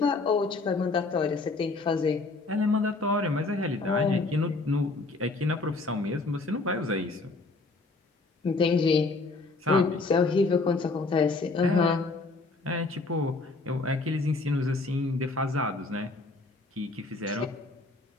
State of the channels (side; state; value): right; quieter; 3.6 dB